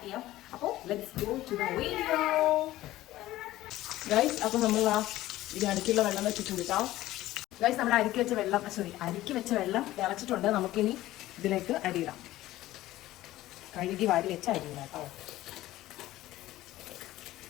ചെയ്യാം. അപ്പോൾ let's go to the video guys. അപ്പോൾ നമ്മൾ ഇത് അടുക്കുള്ള വെള്ളം വെച്ചിട്ടുണ്ട് കേട്ടോ ഗൈസ്. നമ്മുടെ അരിക്ക് വെച്ച വെള്ളം തിളച്ചിട്ടുണ്ട്. നമുക്കിനി ഇതിലേക്ക് അരിയിടാം. കഴുകി വാരി വെച്ച അരിയില്ല കേട്ടോ.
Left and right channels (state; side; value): quieter; right; 15.8 dB